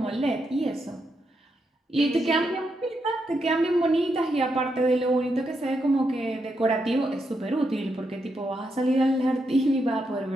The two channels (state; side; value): normal; both; correlation 0.82